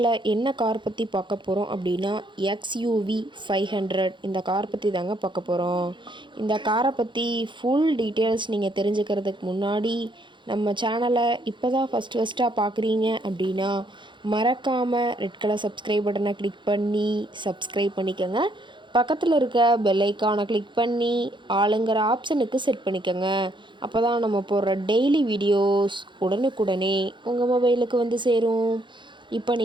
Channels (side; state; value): left; late; 0.23 ms